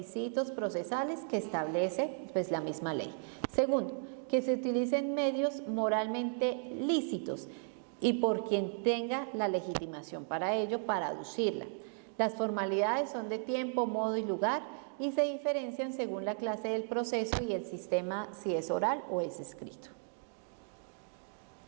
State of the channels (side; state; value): left; silent; 54 dB below the other